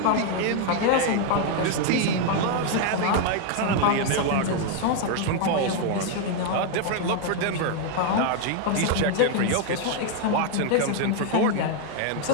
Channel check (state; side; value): different; both; correlation 0.00